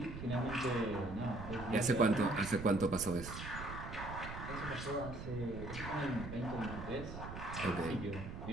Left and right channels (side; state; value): right; noise; rumble, 8 dB below the sound